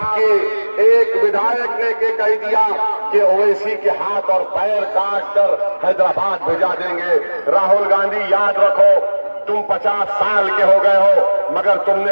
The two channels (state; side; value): inverted; both; correlation -1.00